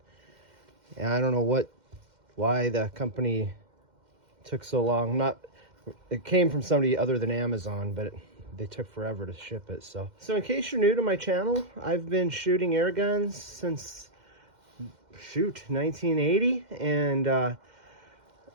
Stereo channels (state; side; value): late; left; 2.1 ms